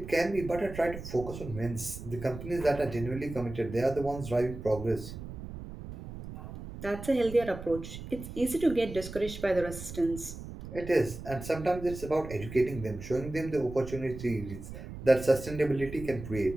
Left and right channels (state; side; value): noise; right; rumble, 11 dB below the sound